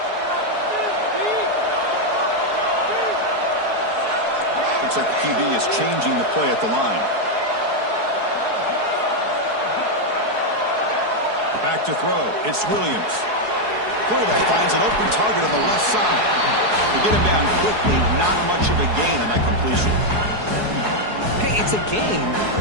Looks like the QB is changing the play at the line. Back to throw. It's Williams. Quarterback finds an open target on the left side. They get him down quickly. Not much of a gain on that completion. Hey, it's a game,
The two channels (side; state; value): left; late; 4.7 ms